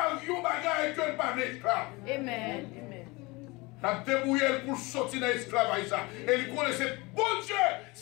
il bagaille que pas d'esclave. Amen. Il a débrouillé pour sortir de l'esclavage. Et il connaissait bon Dieu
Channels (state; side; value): quieter; right; 24.4 dB